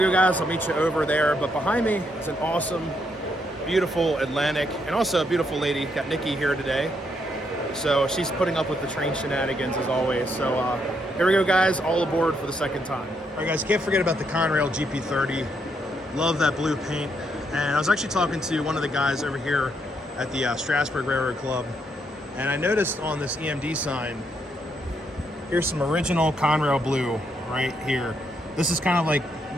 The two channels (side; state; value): both; normal; correlation 0.76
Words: go, guys. I'll meet you over there. But behind me is an awesome, beautiful Atlantic, and also a beautiful lady. Got Nikki here today. So she's putting up with the train shenanigans as always. So here we go, guys. All aboard for the second time. All right, guys. Can't forget about the Conrail GP30. Love that blue paint. And I was actually talking to one of the guys over here at the Strasburg Railroad Club, and I noticed on this EMD sign, here's some original Conrail blue right here. This is kind of like a